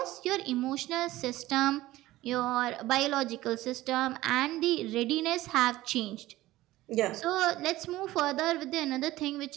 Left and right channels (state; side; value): quieter; left; 16.9 dB